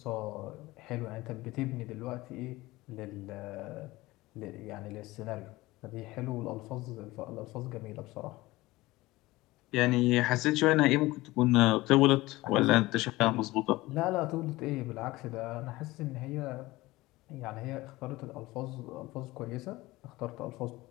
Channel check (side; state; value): right; quieter; 19.5 dB